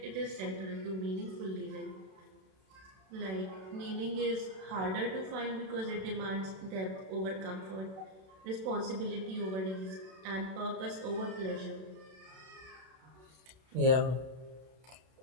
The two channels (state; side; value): late; left; 32 ms